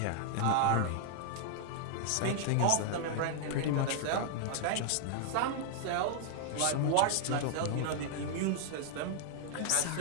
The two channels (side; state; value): both; different; correlation -0.01